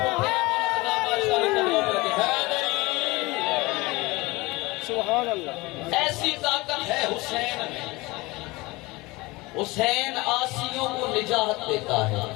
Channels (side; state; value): right; quieter; 22.5 dB